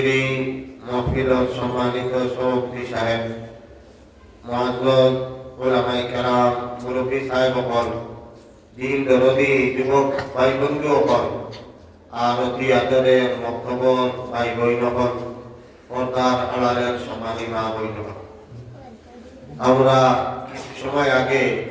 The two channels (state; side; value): identical; both; correlation 1.00